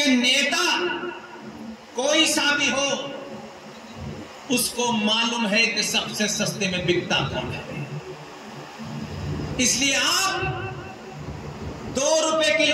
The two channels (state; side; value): identical; both; correlation 1.00